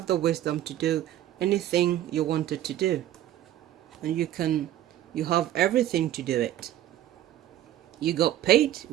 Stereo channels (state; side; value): quieter; left; 12.6 dB